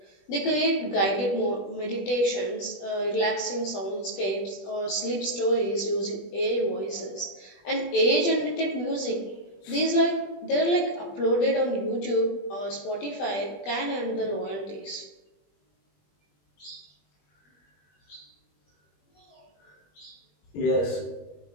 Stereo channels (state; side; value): late; right; 21 ms